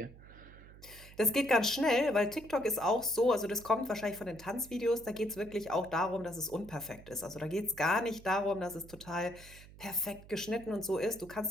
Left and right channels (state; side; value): noise; right; hum, 19 dB below the sound